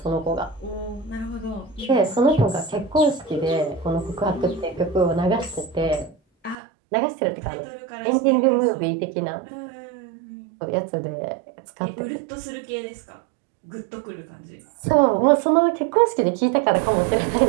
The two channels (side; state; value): left; drops out; at 6.6 s